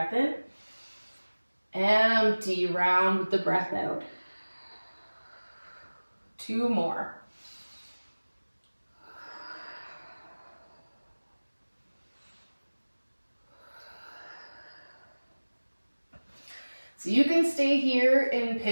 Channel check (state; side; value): inverted; both; correlation -1.00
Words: in. Empty, round with the breath out. 2 more. So you can stay here in